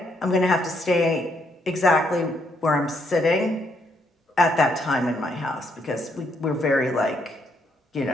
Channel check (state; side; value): normal; both; correlation 0.74